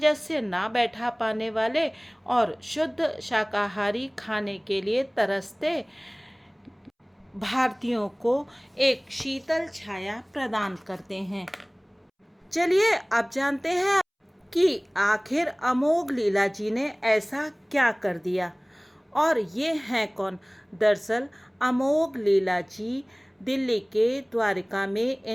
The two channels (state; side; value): identical; both; correlation 1.00